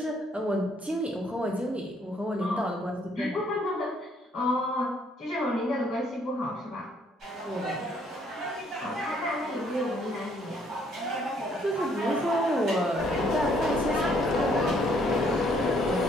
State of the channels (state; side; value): normal; both; correlation 0.66